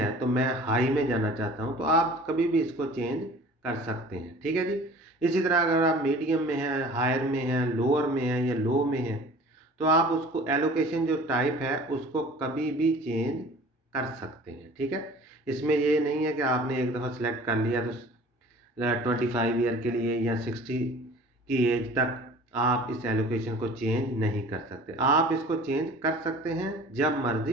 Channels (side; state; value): both; normal; correlation 0.45